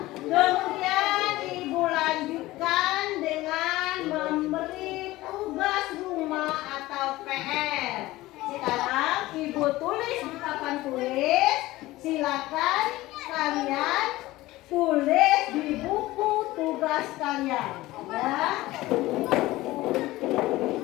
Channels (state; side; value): quieter; right; 18.0 dB